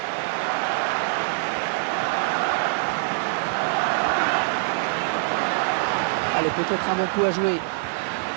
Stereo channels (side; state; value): left; silent; 62 dB below the other